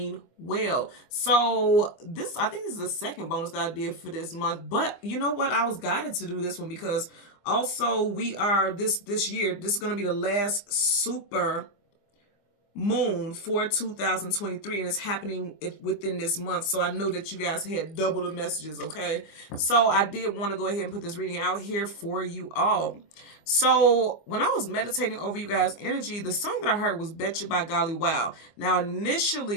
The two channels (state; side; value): late; right; 24 ms